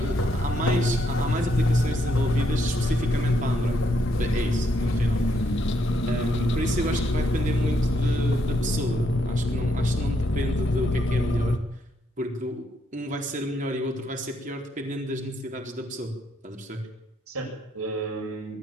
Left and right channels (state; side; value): normal; both; correlation 0.75